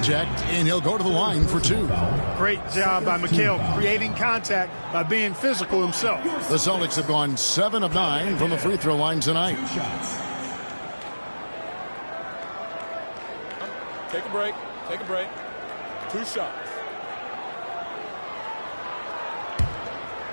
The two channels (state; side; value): inverted; both; correlation -1.00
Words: and he'll go to the line for 2. Great job by McHale creating contact by being physical himself. The Celtics have gone 7 of 9 from the free throw line tonight. Take a break. Take a break. 2 shots.